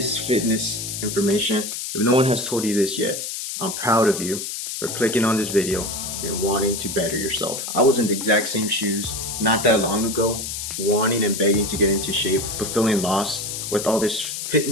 fitness information. If no one has told you this yet, I'm proud of you for clicking on this video and wanting to better yourself. I was in the exact same shoes not that long ago, wanting and begging to get into shape, but feeling lost with all this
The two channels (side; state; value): left; noise; hiss, 5 dB below the sound